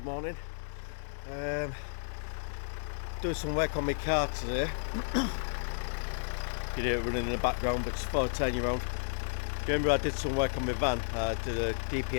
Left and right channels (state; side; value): silent; right; 56 dB below the other